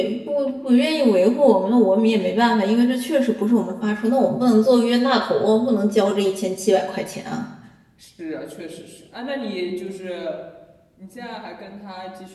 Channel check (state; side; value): identical; both; correlation 1.00